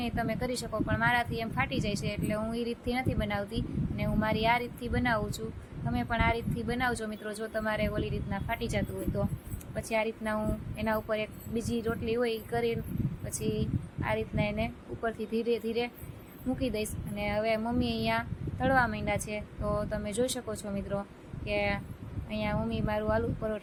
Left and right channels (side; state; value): both; identical; correlation 1.00